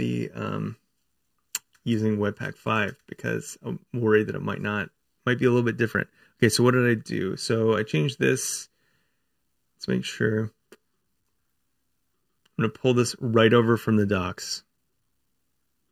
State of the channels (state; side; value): identical; both; correlation 1.00